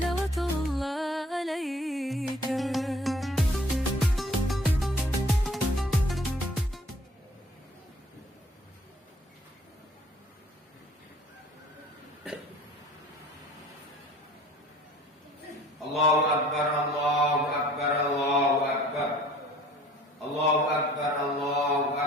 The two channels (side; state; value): both; normal; correlation 0.52